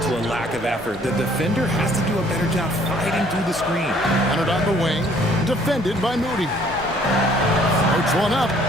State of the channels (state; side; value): normal; both; correlation 0.60